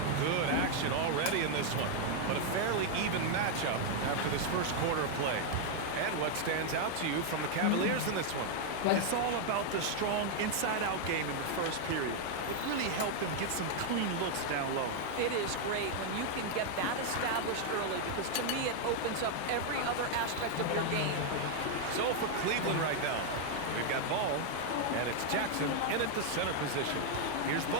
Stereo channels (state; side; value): different; both; correlation 0.00